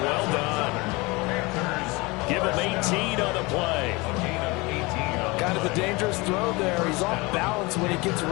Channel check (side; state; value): right; quieter; 24.6 dB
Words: Well done. Give him 18 on the play. Kind of a dangerous throw there. He's off balance when he gets